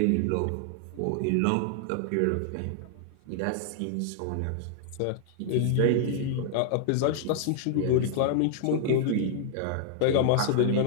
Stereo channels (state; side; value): different; both; correlation -0.01